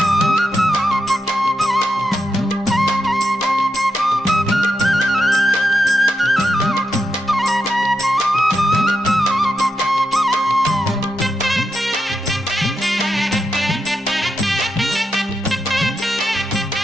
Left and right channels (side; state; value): both; normal; correlation 0.85